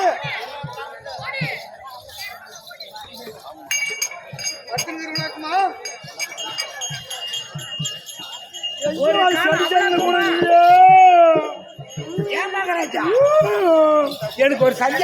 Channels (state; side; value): identical; both; correlation 1.00